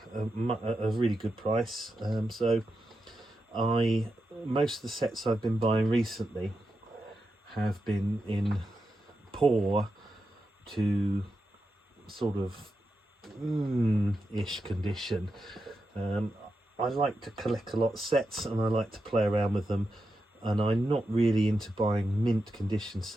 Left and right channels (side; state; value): both; normal; correlation 0.88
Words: a really good price. So most of the sets I've been buying recently have been in poor to sort of ish condition. I like to collect a lot of sets, and I like to play around with them, and I'm not really into buying mint condition